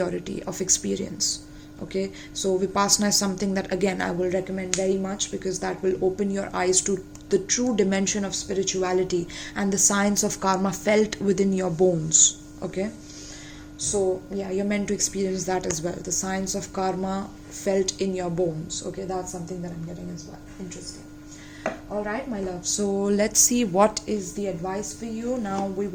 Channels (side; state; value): both; identical; correlation 1.00